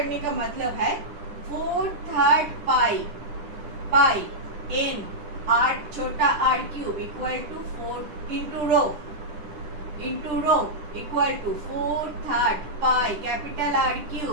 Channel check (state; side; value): late; left; 10 ms